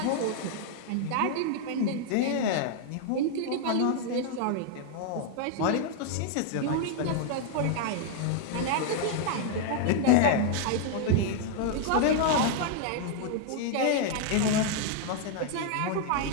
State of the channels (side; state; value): both; different; correlation 0.00